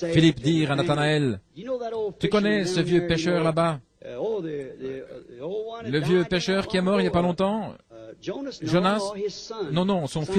Philippe dire à Nathanaël, « Tu connais ce vieux pêcheur là-bas? Le vieux pêcheur qui est mort il n'y a pas longtemps? Jonas? Non, non, son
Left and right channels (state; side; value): identical; both; correlation 1.00